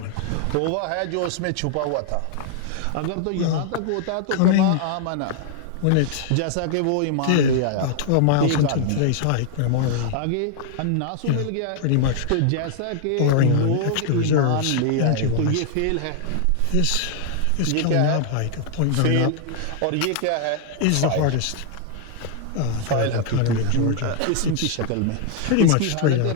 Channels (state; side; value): different; both; correlation 0.00